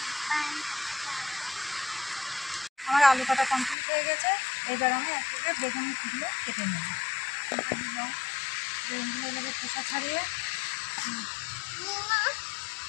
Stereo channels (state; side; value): drops out; right; at 3.8 s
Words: আমার আলু কাটা কমপ্লিট হয়ে গেছে। এবার আমি এক থেকে বেগুনগুলো কেটে নেব। বেগুনগুলো এভাবে খোসা ছাড়িয়ে